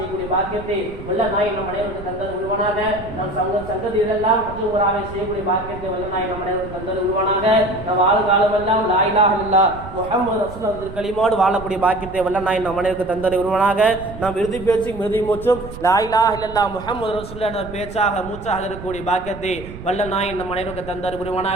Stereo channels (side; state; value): right; noise; rumble, 13 dB below the sound